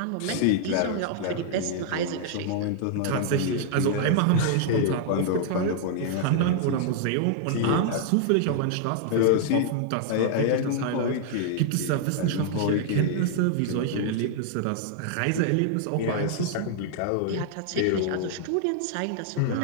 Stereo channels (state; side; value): different; both; correlation -0.01